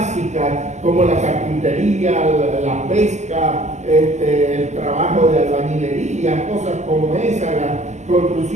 como la carpintería, la pesca, el trabajo de albañilería, cosas como esa, la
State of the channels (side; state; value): left; late; 0.33 ms